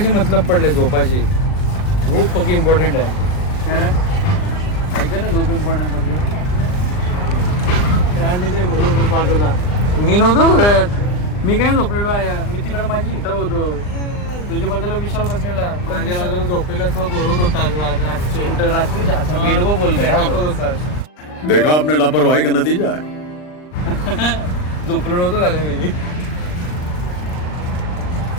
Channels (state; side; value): late; right; 39 ms